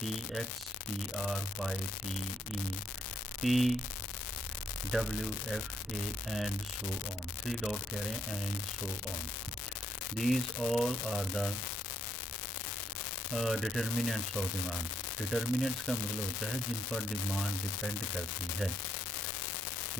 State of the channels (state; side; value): normal; both; correlation 0.74